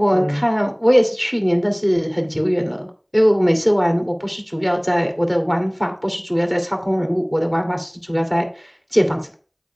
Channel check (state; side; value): identical; both; correlation 1.00